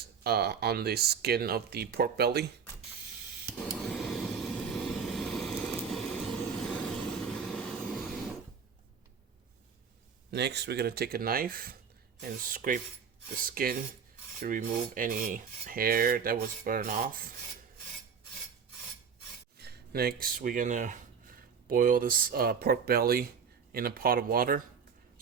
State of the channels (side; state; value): left; quieter; 6.5 dB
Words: on the skin of the pork belly. Next, we're going to take a knife and scrape the skin to remove any hair that was burned off. Next, we're gonna boil this pork belly in a pot of water.